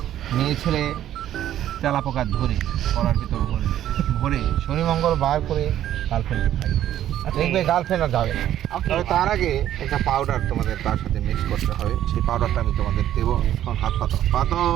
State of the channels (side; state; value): left; quieter; 11.8 dB